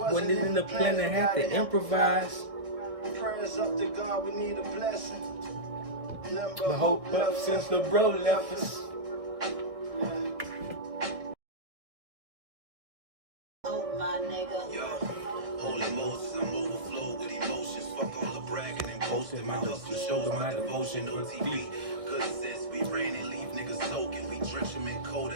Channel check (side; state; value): left; late; 1.6 ms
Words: When it in the plan, I had to improvise. Prayers up to God, we need a blessing. But hope up since the bro left us. Oh my nigga. Yo, holy Moses, I'm overflowed with emotions. Fuck all the bragging and boasting. My hustle shows my devotion on TV. Good sense, we rain and leave niggas soaking. We drench them in code